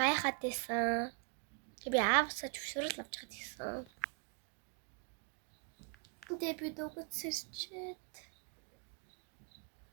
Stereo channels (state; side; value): quieter; left; 37.6 dB